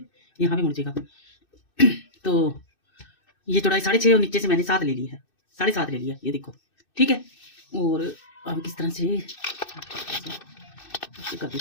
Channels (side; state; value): right; late; 2.6 ms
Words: यहाँ पे मुड़ जाएगा। तो ये चौड़ाई 6.5 और नीचे से मैंने 7 ले ली है, 7.5 ले लिया, ये देखो। ठीक है, और अब किस तरह से कर